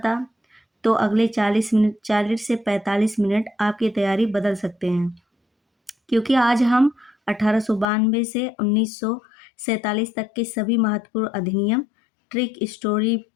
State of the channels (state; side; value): drops out; right; at 7.9 s